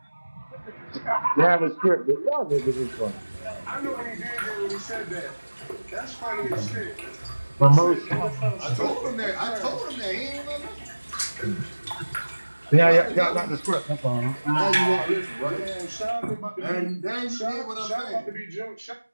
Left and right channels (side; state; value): both; inverted; correlation -1.00